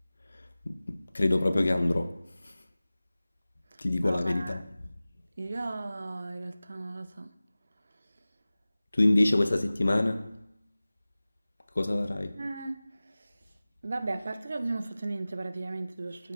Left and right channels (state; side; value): inverted; both; correlation -0.98